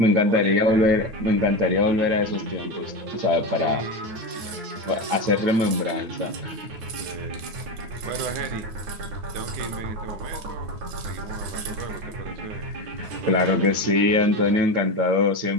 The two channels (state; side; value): late; left; 9.3 ms